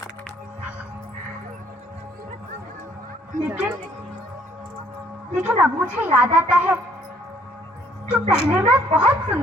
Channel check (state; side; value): normal; both; correlation 0.62